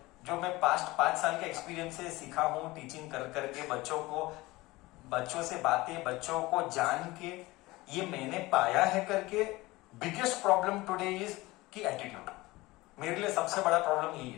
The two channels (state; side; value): quieter; right; 20.4 dB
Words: जो मैं पास्ट 5 साल के एक्सपीरियंस से सीखा हूं टीचिंग कर करके बच्चों को बच्चों से बातें, बच्चों को जान के, ये मैंने पाया है करके बिगेस्ट प्रॉब्लम टुडे इज कि एटीट्यूड। मेरे लिए सबसे बड़ा प्रॉब्लम यही